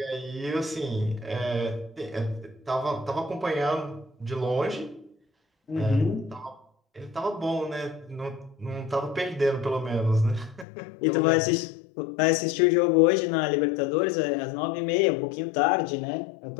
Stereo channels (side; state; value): right; drops out; at 10.7 s